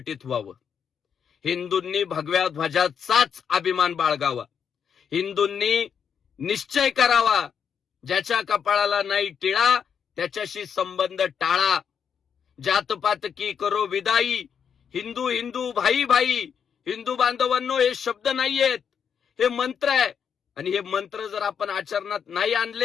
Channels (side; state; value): right; quieter; 7.4 dB